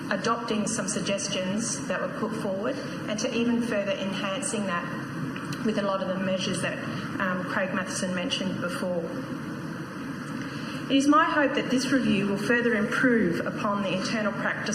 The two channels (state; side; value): identical; both; correlation 1.00